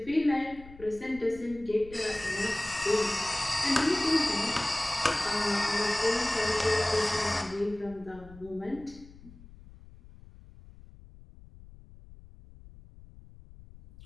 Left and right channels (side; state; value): left; noise; rumble, 20 dB below the sound